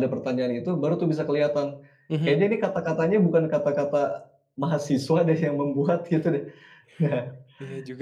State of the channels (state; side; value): identical; both; correlation 1.00